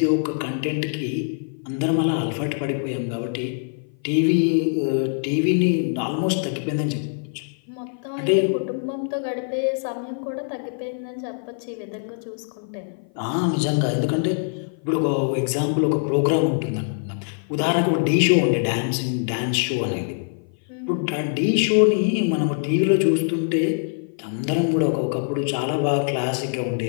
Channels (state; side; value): silent; right; 55 dB below the other